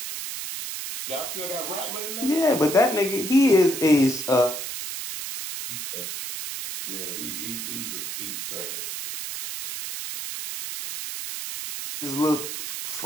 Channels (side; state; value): right; noise; hiss, 6 dB below the sound